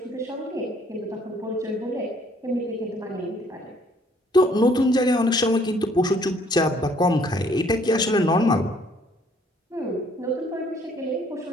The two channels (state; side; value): normal; both; correlation 0.62